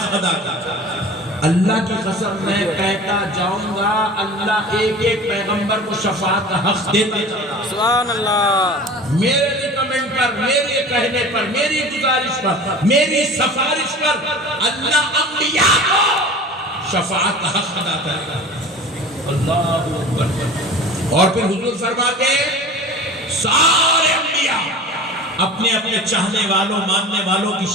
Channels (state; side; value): normal; both; correlation 0.39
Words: ادا کر۔ اللہ کی قسم میں کہتا جاؤں گا، اللہ ایک ایک پیغمبر کو شفاعت کا حق دیتا جاؤں گا۔ سبحان اللہ۔ میرے ریکمنڈ پر، میرے کہنے پر، میری گزارش پر، میری سفارش پر اللہ انبیاء کو شفاعت کا حق ادا کرے گا۔ اللہ اکبر۔ اور پھر حضور فرماتے ہیں سارے انبیاء اپنے اپنے چاہنے والوں ماننے والوں کی